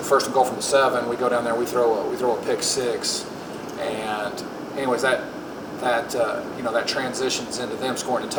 and goal from the 7. We go down there, we throw a pick 6, and anyways that transitions into them scoring a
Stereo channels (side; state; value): both; identical; correlation 1.00